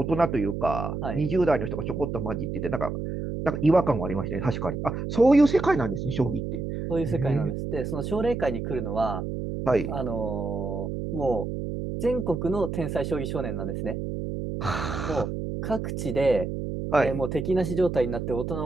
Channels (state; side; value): noise; right; hum, 4 dB below the sound